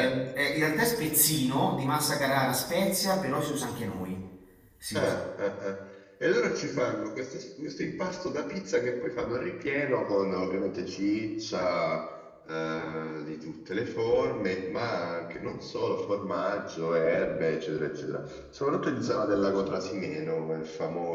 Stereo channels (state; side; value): identical; both; correlation 1.00